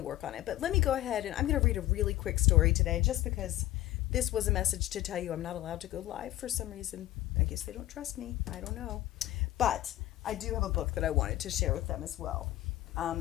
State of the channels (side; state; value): right; quieter; 15.3 dB